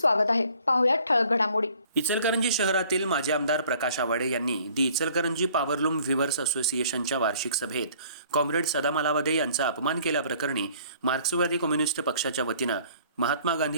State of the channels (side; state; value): both; inverted; correlation -0.56